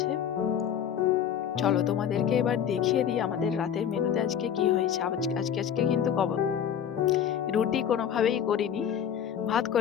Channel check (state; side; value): quieter; right; 8.9 dB